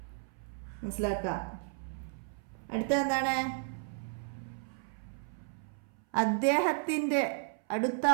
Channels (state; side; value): silent; left; 55 dB below the other